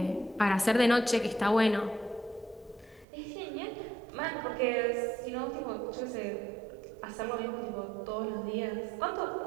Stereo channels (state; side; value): drops out; left; at 3.1 s